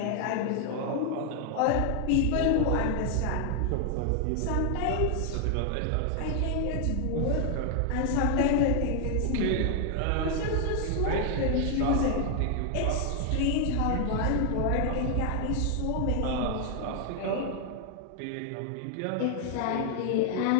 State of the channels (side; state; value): both; different; correlation 0.00